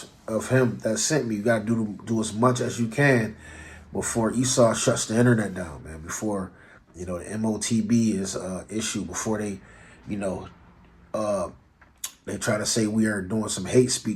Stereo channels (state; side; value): identical; both; correlation 1.00